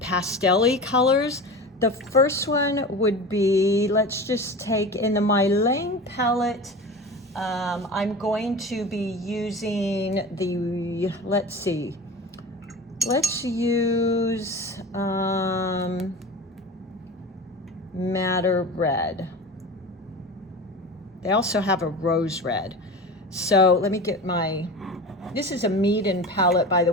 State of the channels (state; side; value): normal; both; correlation 0.31